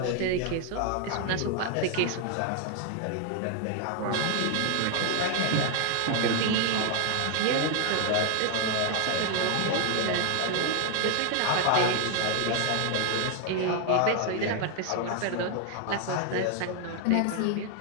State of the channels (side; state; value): both; different; correlation 0.00